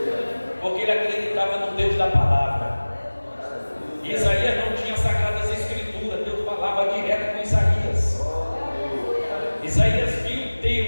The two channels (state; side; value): inverted; both; correlation -1.00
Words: da palavra. Isaías não tinha sagradas escrituras, Deus falava direto com Isaías. Isaías viu